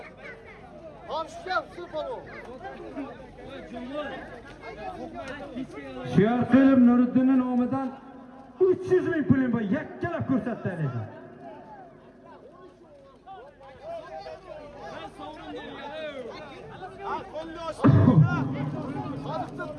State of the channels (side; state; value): both; identical; correlation 1.00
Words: Siyarqilib Nuriddinning nomidan 300 ming pulim bor. Yakkalab ko'rsatdi ekan.